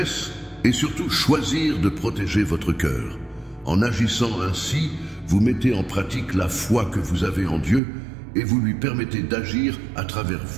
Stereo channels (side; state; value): left; drops out; at 7.8 s